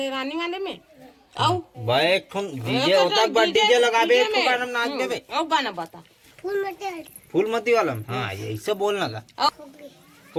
रानी वाले में आओ भाई एक डीजे होता डीजे लगाबे एक का नाम नाच देबे आओ गाना बता फूलमती वाला में? हाँ ये ऐसे बोलना का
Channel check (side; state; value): both; identical; correlation 1.00